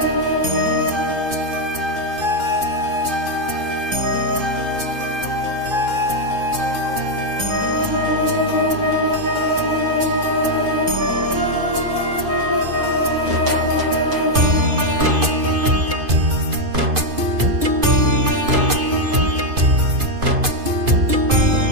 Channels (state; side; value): late; left; 2.5 ms